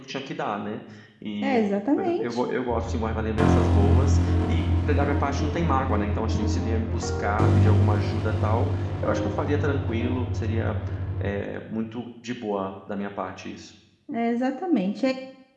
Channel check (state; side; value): identical; both; correlation 1.00